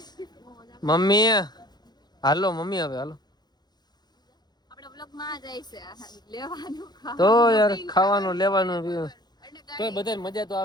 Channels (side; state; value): right; late; 0.20 ms